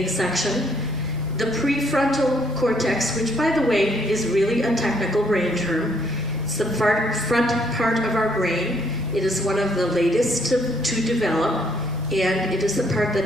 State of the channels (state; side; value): normal; both; correlation 0.68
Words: section. The prefrontal cortex, which by the way is really a technical brain term. It's the front part of our brain. It is one of the latest to develop, and it is the part